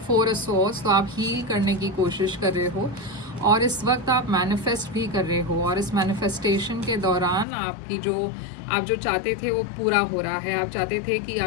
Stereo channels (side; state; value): right; drops out; at 7.5 s